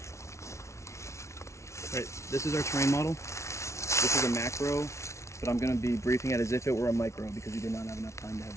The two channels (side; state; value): right; late; 0.13 ms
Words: Alright, this is our terrain model. This is a macro, but I'm going to be briefing it as if it were a micro because we did not have enough time to have